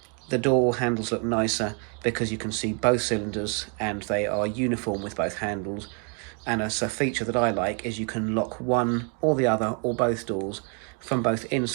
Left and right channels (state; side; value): quieter; left; 38.6 dB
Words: the door handles look nicer because you can see both cylinders and they are uniform with both handles. And as a feature that I like is you can lock one or the other or both doors from both